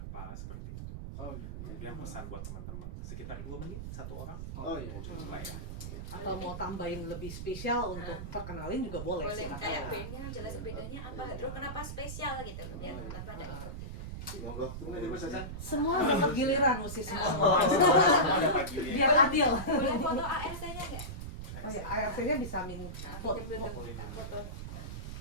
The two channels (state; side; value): noise; right; rumble, 7 dB below the sound